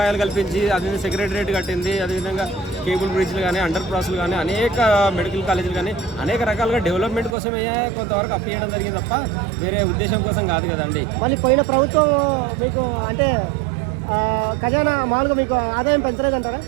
కల్పించి, అది సెక్రటరియట్ కట్టింది, అదేవిధంగా కేబుల్ బ్రిడ్జ్లు కానీ, అండర్ పాస్లు కానీ, అనేక మెడికల్ కాలేజీలు కానీ, అనేక రకాలుగా డెవలప్మెంట్ కోసమే కొంతవరకు అప్పు చేయడం జరిగింది తప్ప వేరే ఉద్దేశం కోసం కాదు కదండి. మళ్ళీ పోయిన ప్రభుత్వం మీకు అంటే ఖజానా మామూలుగా మీకు ఆదాయం పెంచలేదంటారా?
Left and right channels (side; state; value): left; drops out; at 7.4 s